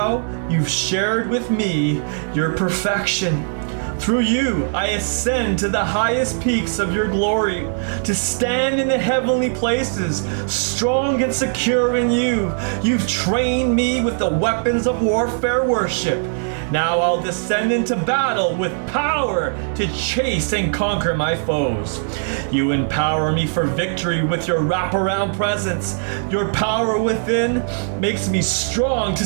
you've shared with me your perfection. Through you, I ascend to the highest peaks of your glory, to stand in the heavenly places, strong and secure in you. You've trained me with the weapons of warfare worship. Now I'll descend into battle with power to chase and conquer my foes. You empower me for victory with your wraparound presence. Your power within makes me strong to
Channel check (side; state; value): left; silent; digital silence